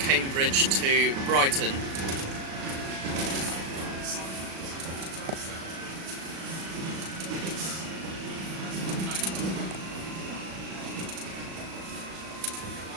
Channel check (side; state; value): left; late; 37 ms